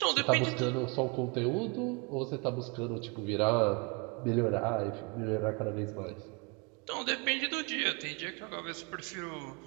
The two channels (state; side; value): quieter; left; 30.2 dB